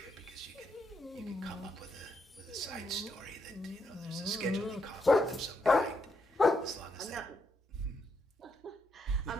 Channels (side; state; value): both; normal; correlation 0.78